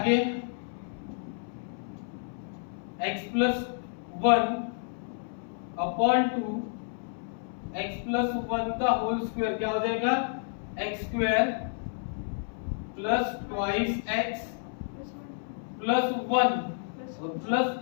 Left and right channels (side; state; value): right; silent; 58 dB below the other